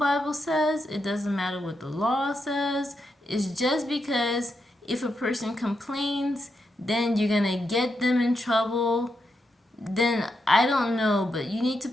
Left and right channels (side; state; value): both; normal; correlation 0.84